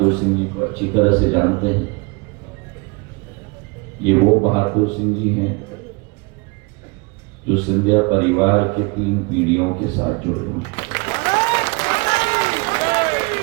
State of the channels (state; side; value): quieter; left; 28.1 dB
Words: सिंह जी को अच्छी तरह से जानते हैं। ये वो बहादुर सिंह जी हैं जो सिंधिया परिवार के 3 पीढ़ियों के साथ जुड़े हुए हैं।